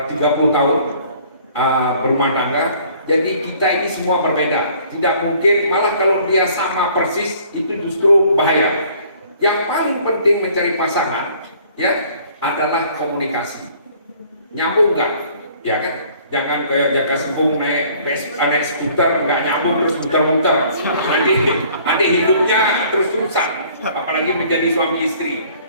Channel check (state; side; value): inverted; both; correlation -0.56